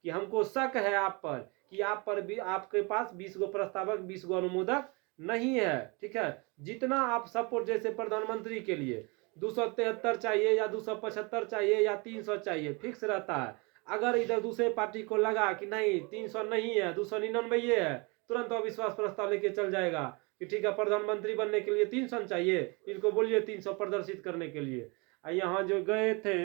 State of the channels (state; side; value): quieter; left; 29.2 dB